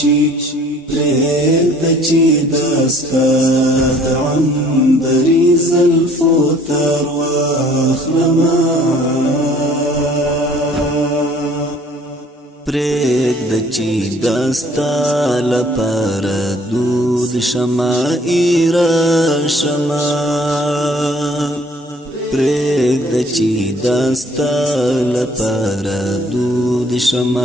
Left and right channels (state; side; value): normal; both; correlation 0.56